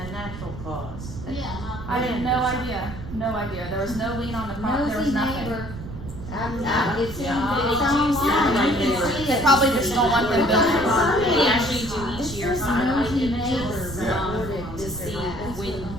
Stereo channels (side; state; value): right; noise; rumble, 10 dB below the sound